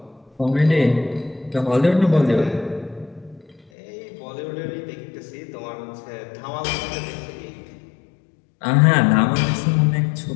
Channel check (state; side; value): drops out; right; at 3.7 s